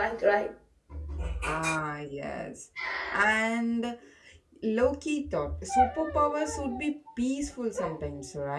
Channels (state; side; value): identical; both; correlation 1.00